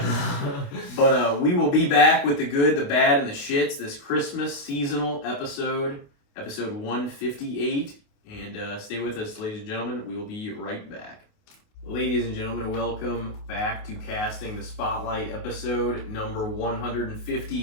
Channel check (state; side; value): late; right; 28 ms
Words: But we will be back with the good, the bad, and the shits this Christmas seasonal episode 158. And stay with us, ladies and gentlemen. We will be right back. Ladies and gentlemen, welcome back to Casting the Spotlight, episode number